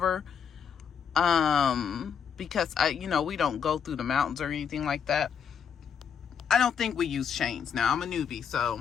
because we don't go through the mountains or anything like that. I don't think we use chains. Now I'm a newbie,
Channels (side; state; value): right; quieter; 7.4 dB